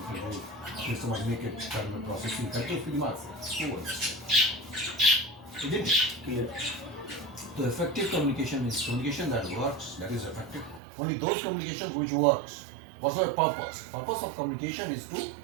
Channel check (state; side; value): drops out; left; at 10.8 s